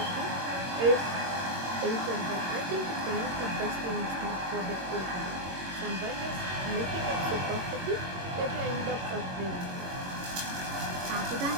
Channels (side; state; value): left; late; 21 ms